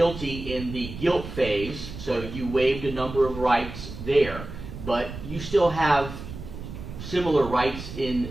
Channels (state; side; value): noise; right; rumble, 10 dB below the sound